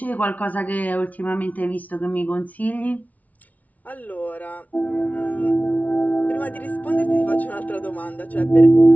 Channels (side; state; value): right; late; 0.072 ms